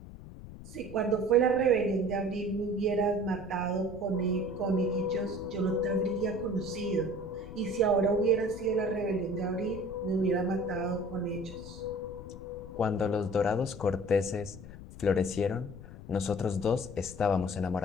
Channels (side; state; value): left; noise; rumble, 14 dB below the sound